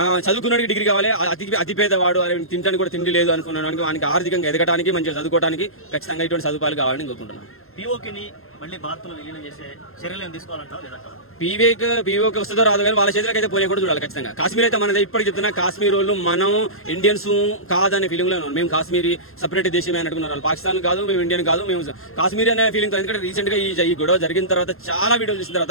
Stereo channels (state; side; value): late; right; 0.61 ms